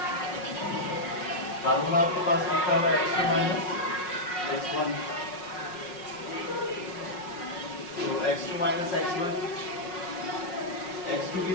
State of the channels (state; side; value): late; right; 5.5 ms